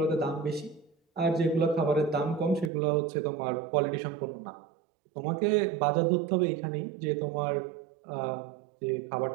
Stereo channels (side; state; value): left; drops out; at 2.7 s